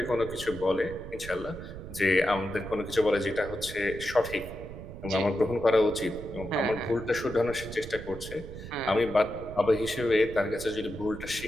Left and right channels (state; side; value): noise; right; rumble, 12 dB below the sound